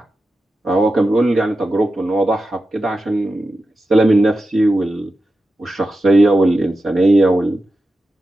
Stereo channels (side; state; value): both; normal; correlation 0.91